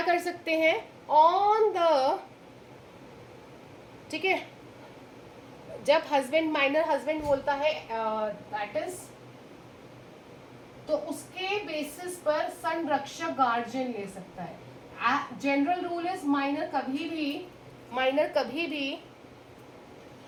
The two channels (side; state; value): both; identical; correlation 1.00